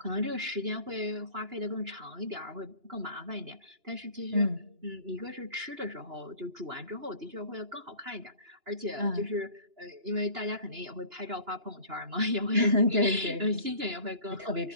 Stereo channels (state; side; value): late; left; 2.9 ms